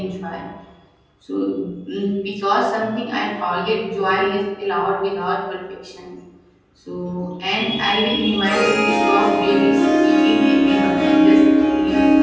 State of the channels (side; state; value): both; identical; correlation 1.00